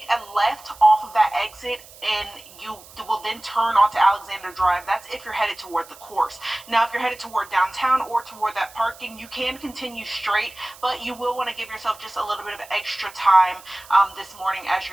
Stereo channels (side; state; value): right; noise; hiss, 21 dB below the sound